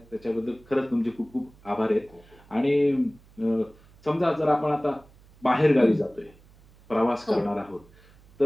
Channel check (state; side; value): noise; right; hum, 27 dB below the sound